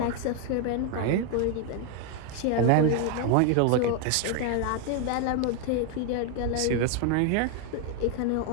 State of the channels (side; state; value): both; different; correlation 0.01